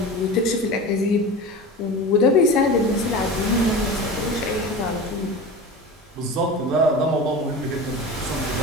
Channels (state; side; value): normal; both; correlation 0.31